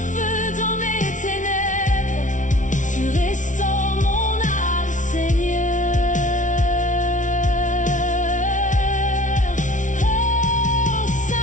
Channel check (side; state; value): right; late; 0.37 ms